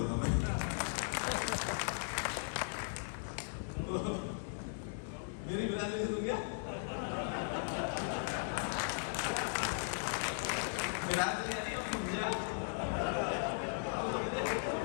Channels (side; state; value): right; silent; digital silence